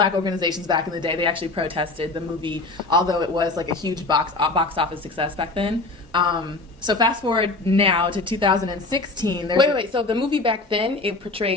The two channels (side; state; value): right; quieter; 3.2 dB